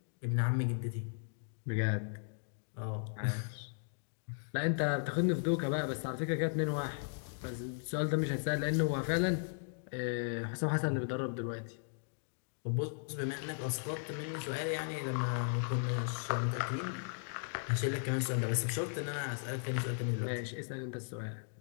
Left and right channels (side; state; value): right; silent; digital silence